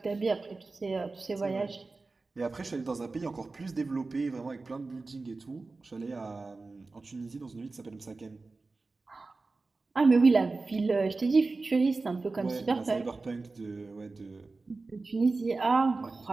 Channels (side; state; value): left; quieter; 3.7 dB